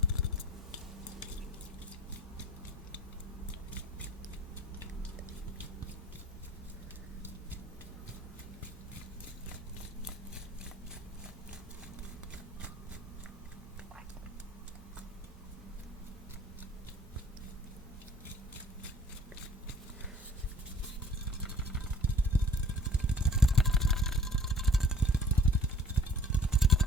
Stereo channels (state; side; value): normal; both; correlation 0.52